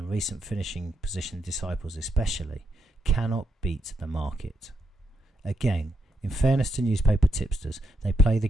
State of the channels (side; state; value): both; normal; correlation 0.81